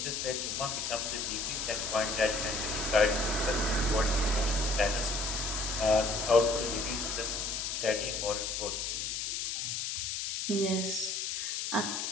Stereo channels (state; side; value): noise; left; hiss, 2 dB below the sound